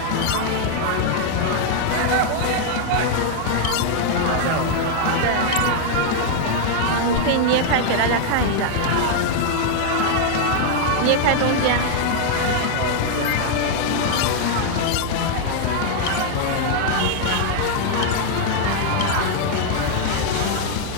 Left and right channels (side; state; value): both; different; correlation 0.00